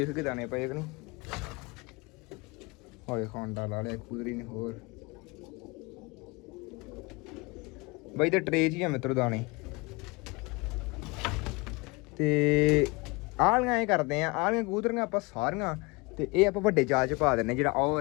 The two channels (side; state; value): right; quieter; 26.5 dB